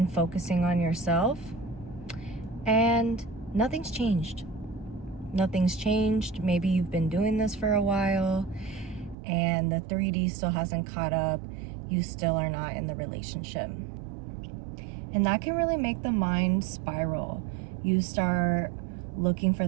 focusing on yourself. And nothing's changed. Nothing's changed. Maybe you've been doing this for a while and the 3D still hasn't caught up. You still are not in the relationship. And that can really make the mind spiral. You start looking for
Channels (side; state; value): left; drops out; at 9.2 s